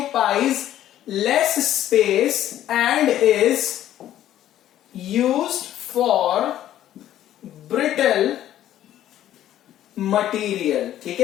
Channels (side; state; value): right; quieter; 12.2 dB